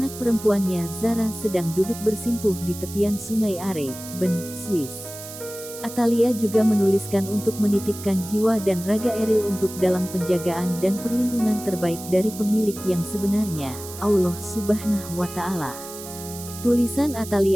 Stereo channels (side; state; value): right; noise; hiss, 13 dB below the sound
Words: perempuannya Zara sedang duduk bersimpuh di tepian Sungai Are, Bern, Swiss. Atalia juga menuliskan untuk menitipkan jiwa dan raga Eril untuk dalam penjagaan dan perlindungan terbaik dari pemilik yang sebenarnya, Allah Subhanahu wa Ta'ala. Tulisan